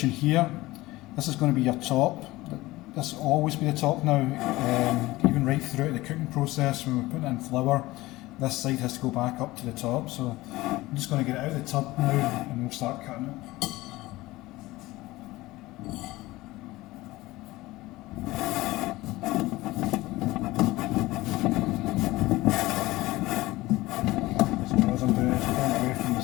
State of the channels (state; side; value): quieter; right; 19.0 dB